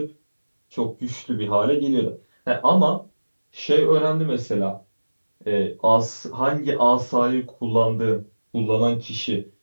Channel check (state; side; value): inverted; both; correlation -1.00